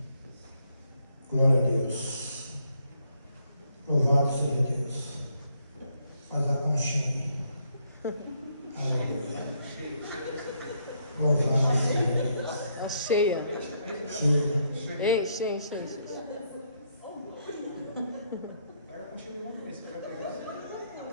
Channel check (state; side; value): inverted; both; correlation -0.73